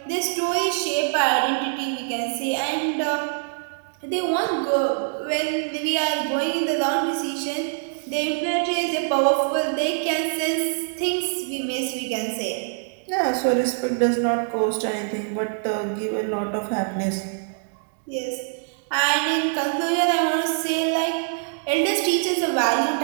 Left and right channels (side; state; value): left; silent; digital silence